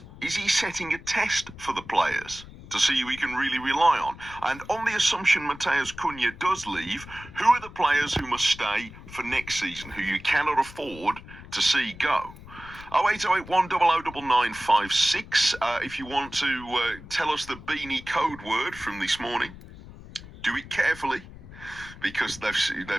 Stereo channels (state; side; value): noise; left; rumble, 17 dB below the sound